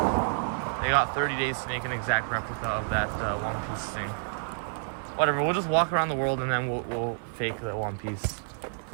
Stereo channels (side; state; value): left; silent; 59 dB below the other